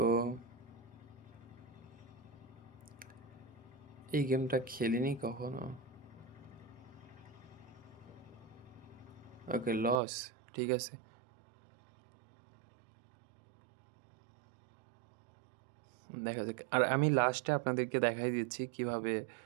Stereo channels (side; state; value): left; drops out; at 10.0 s